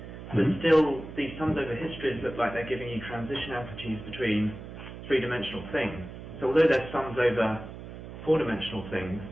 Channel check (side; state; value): right; noise; hum, 12 dB below the sound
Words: But still, these sums over histories look like they're giving you transition amplitudes between three-dimensional things. So although they're sums over four-dimensional things,